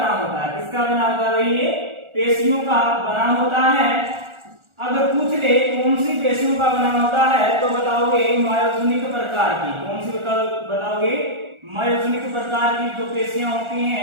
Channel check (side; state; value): left; late; 1.4 ms